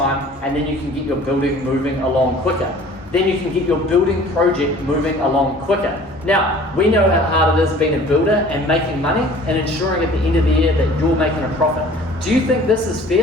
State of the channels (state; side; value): normal; both; correlation 0.48